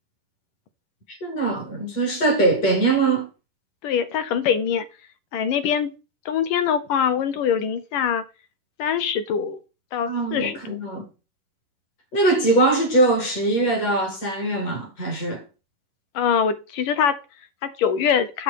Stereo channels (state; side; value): late; right; 11 ms